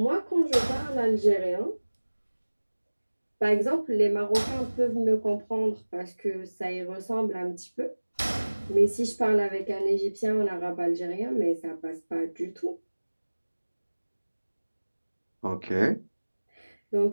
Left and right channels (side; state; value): both; inverted; correlation -1.00